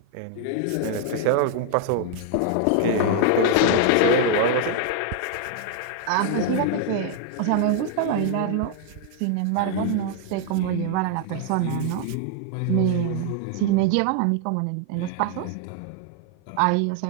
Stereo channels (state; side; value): different; both; correlation 0.00